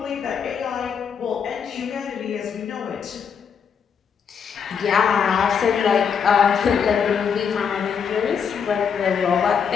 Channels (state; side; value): quieter; right; 6.9 dB